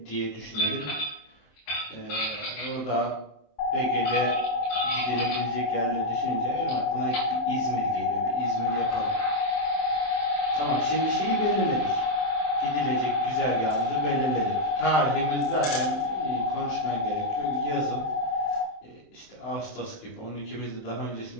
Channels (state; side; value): late; right; 27 ms